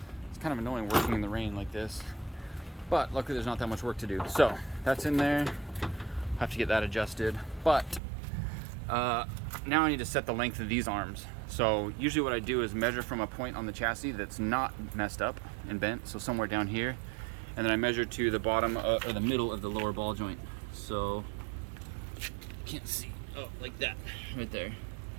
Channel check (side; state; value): left; drops out; at 8.0 s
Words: It's kind of annoying working in the rain like this, but luckily there's not that much work to do. So that's in there. Have to get that adjusted. But now I need to set the length of these arms. So usually what I do is measure from a point on the chassis that's not messed up and bent, so somewhere down here, and then I measure to the bottom or the middle of the lower ball joint. So can't see. Oh, like that, right there.